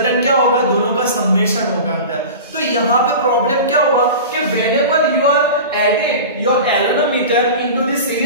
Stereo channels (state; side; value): inverted; both; correlation -0.33